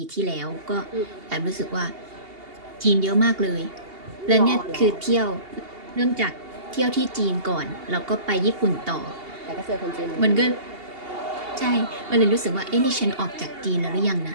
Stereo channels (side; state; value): left; late; 2.8 ms